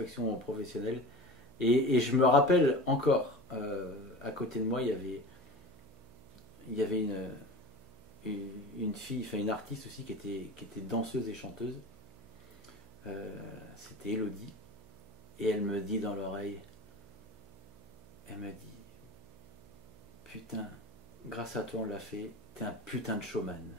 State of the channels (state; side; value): noise; right; hum, 23 dB below the sound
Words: professionnelle. Et je me rappelle encore, à côté de moi, il y avait une fille, enfin une artiste aussi qui était danseuse et chanteuse. C'était Elodie. Et elle me dit dans l'oreille, elle m'a dit, putain, grâce à toi on l'a fait, t'es un putain de showman.